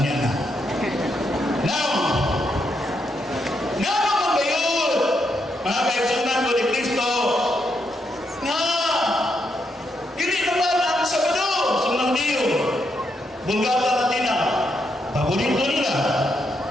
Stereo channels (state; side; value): normal; both; correlation 0.80